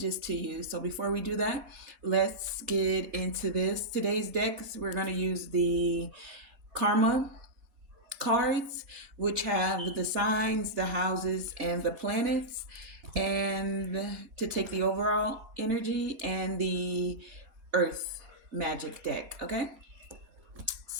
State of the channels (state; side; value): late; left; 4.2 ms